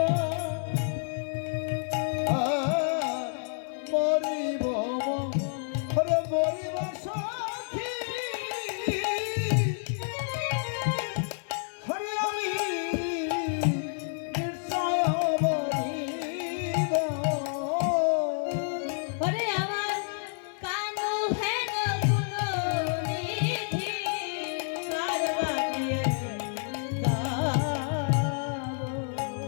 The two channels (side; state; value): right; silent; 58 dB below the other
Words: মরিব ওরে মরিব সখী, হরে আমি নিশ্চয় মরিব। ওরে আমার কানু হেন গুণনিধি কারবারিয়ে দাও,